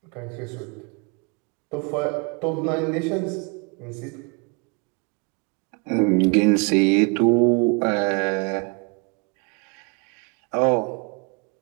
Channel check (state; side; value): quieter; left; 32.4 dB